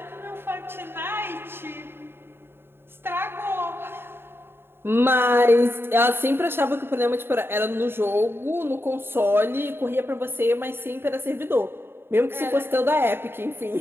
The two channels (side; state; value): left; late; 0.11 ms